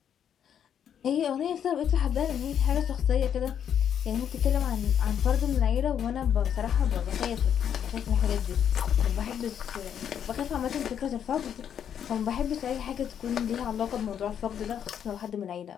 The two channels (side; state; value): right; quieter; 8.8 dB